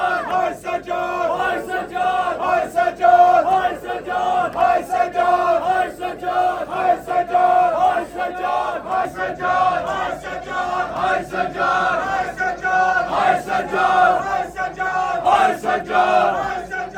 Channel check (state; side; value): identical; both; correlation 1.00